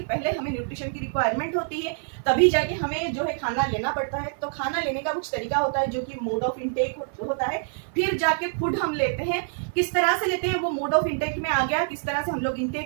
पहले हमें न्यूट्रिशन की रिक्वायरमेंट होती है, तभी जाके हमें जो है खाना लेना पड़ता है। तो खाना लेने का कुछ तरीका होता है जो कि मोड ऑफ इनटेक होता है। फिर जाके फूड हम लेते हैं, किस तरह से लेते हैं वो मोड ऑफ इनटेक में आ गया, किस तरह से हम लोग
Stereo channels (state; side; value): silent; left; 61 dB below the other